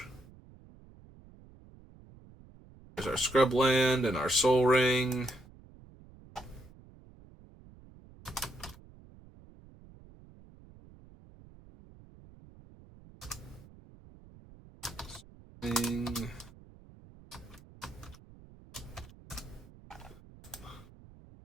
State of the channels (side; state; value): right; noise; rumble, 22 dB below the sound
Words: There's our Scrubland and our Soul Ring.